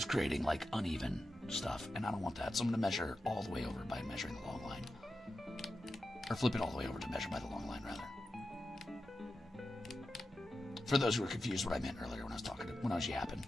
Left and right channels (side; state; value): both; normal; correlation 0.91